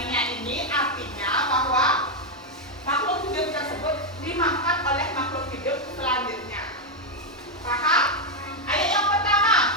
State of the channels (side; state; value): both; normal; correlation 0.02